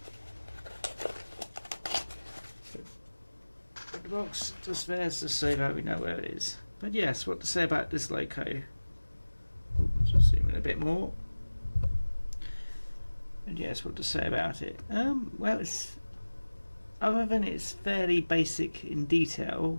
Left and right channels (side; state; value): both; inverted; correlation -1.00